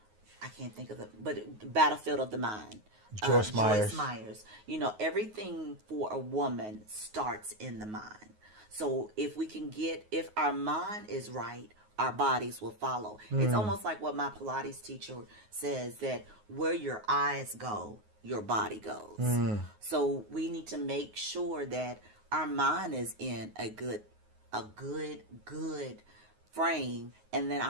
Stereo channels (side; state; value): left; late; 9.5 ms